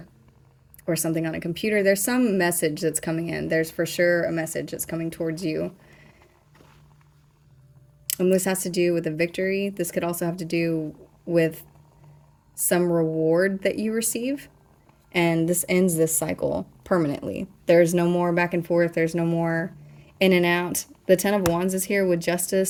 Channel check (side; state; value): both; identical; correlation 1.00